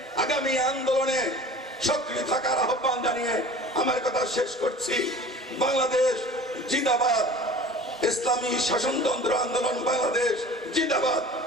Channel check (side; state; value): both; normal; correlation 0.42